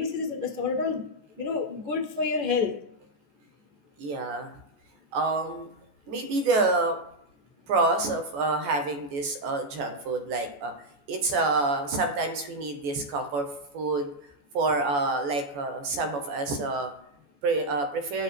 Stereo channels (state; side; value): late; left; 14 ms